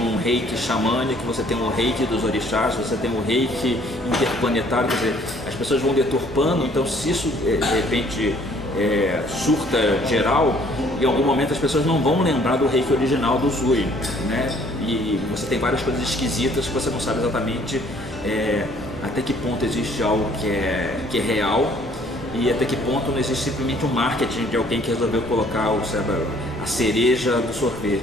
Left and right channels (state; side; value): normal; both; correlation 0.60